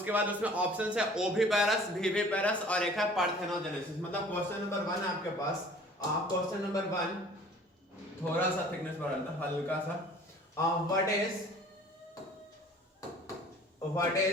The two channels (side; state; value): both; normal; correlation 0.49